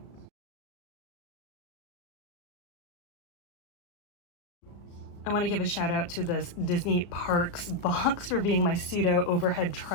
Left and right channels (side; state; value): right; late; 35 ms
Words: I want to give a shout out to this Disney Parks box for being my pseudo overhead